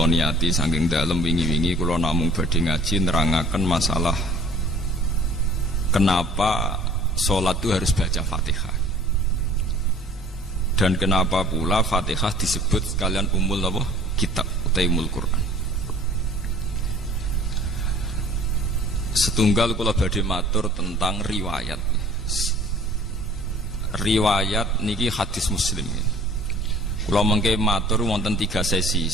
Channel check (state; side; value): normal; both; correlation 0.51